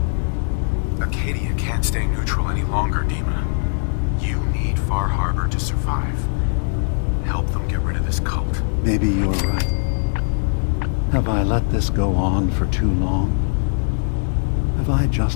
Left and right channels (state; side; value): silent; right; digital silence